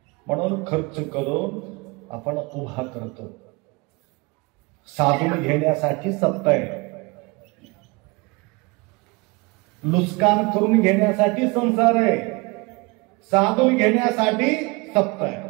म्हणून खर्च करून आपण उभा करतो. साधून घेण्यासाठी सत्ता आहे, लुस्कान करून घेण्यासाठी संसार आहे, साधून घेण्यासाठी सत्ता आहे.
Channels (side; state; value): left; quieter; 26.4 dB